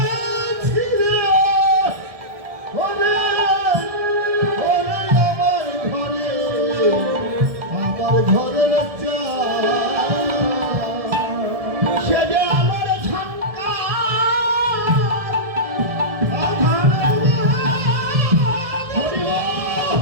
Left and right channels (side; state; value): left; late; 1.7 ms